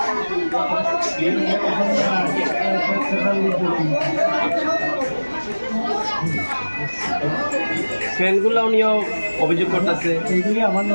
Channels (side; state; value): both; inverted; correlation -1.00